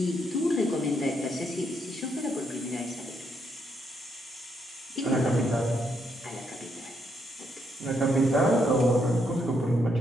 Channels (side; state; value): both; normal; correlation 0.76